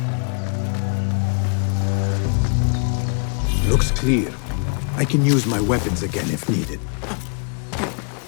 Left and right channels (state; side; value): quieter; right; 40.0 dB